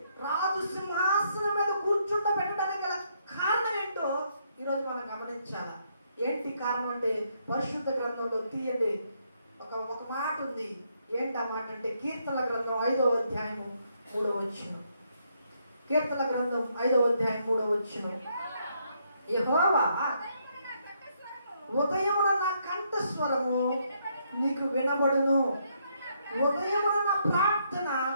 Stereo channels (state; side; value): inverted; both; correlation -0.74